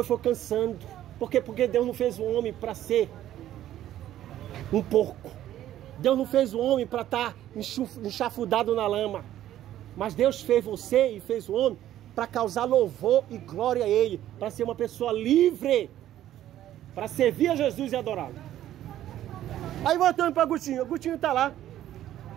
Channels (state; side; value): quieter; left; 12.6 dB